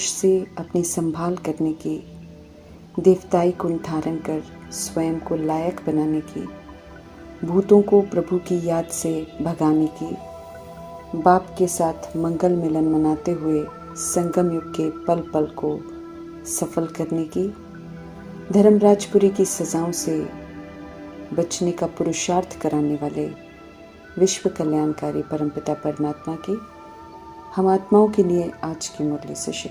से अपनी संभाल करने की, देवताई गुण धारण कर स्वयं को लायक बनाने की, भूतों को प्रभु की याद से भगाने की, बाप के साथ मंगल मिलन मनाते हुए संगम युग के पल पल को सफल करने की, धर्मराजपुरी की सजाओं से बचने का पुरुषार्थ कराने वाले विश्व कल्याणकारी परमपिता परमात्मा की हम आत्माओं के लिए आज की मुरली से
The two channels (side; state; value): both; identical; correlation 1.00